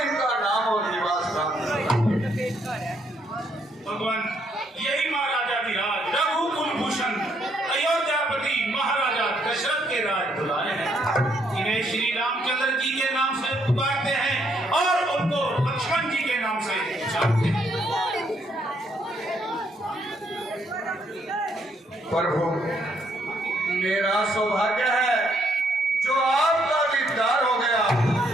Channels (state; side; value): normal; both; correlation 0.72